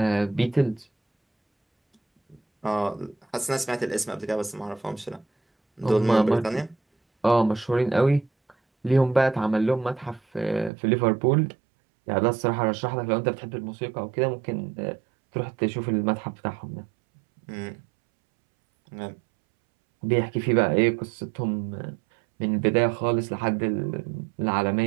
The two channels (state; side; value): drops out; left; at 10.7 s